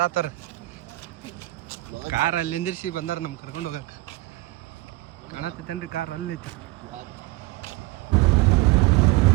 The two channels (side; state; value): left; quieter; 20.0 dB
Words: ಕಾರ್ ಅಲ್ಲಿ ನಿಂದಿರ್ಸಿ ಬಂದಾರ ನಮ್ಗೆ ಕರ್ಕೊಂಡು ಹೋಗಕ್ಕೆ. ಕಾಣತ್ತೈತೇನ್ರಿ ಕಾರ್ ಅಲ್ಲೈತಿ.